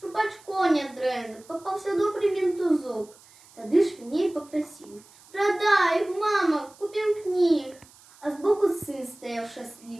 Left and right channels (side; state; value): right; noise; hiss, 26 dB below the sound